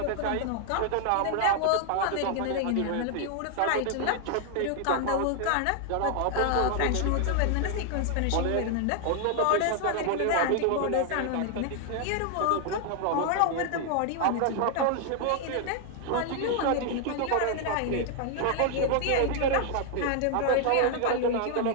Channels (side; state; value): both; different; correlation 0.00